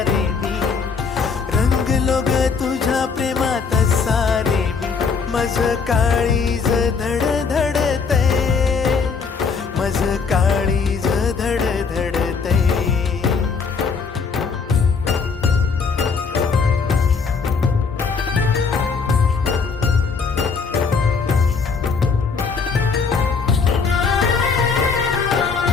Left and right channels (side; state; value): right; quieter; 5.3 dB